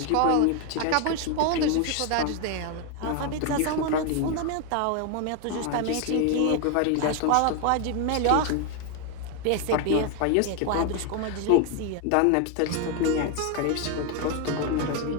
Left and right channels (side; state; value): both; different; correlation 0.01